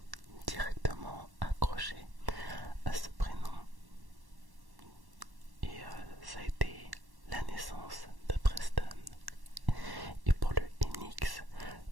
directement accroché à ce prénom. Et ça a été la naissance de Preston. Et pour le NX,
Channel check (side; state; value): left; late; 1.1 ms